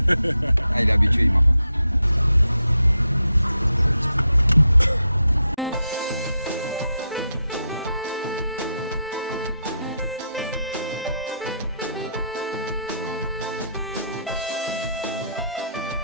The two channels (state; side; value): inverted; both; correlation -0.83